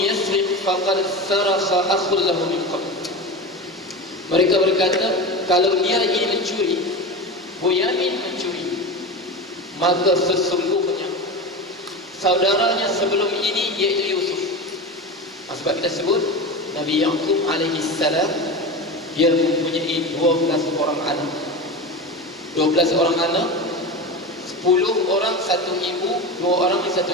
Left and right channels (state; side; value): normal; both; correlation 0.25